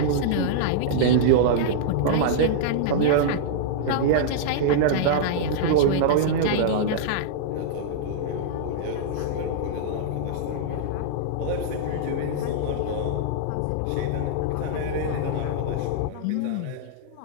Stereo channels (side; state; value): both; different; correlation -0.02